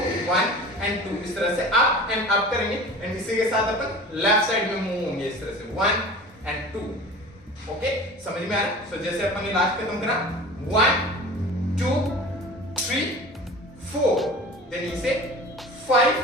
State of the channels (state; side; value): normal; both; correlation 0.38